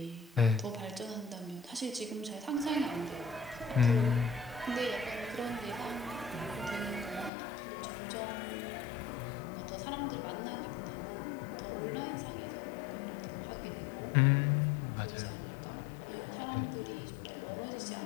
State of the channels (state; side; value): drops out; right; at 7.3 s